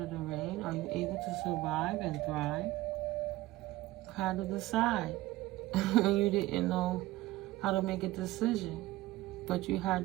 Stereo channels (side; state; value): left; quieter; 17.4 dB